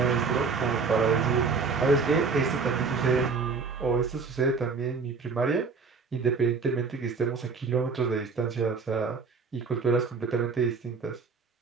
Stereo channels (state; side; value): quieter; left; 4.9 dB